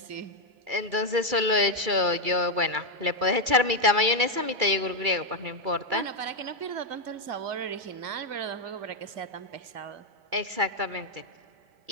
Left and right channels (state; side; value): late; left; 2.3 ms